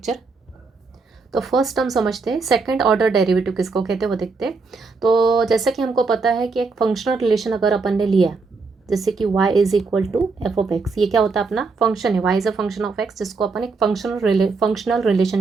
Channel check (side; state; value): left; quieter; 4.3 dB